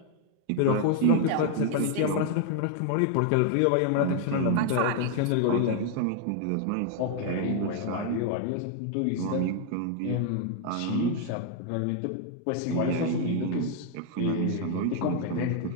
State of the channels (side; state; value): both; different; correlation 0.00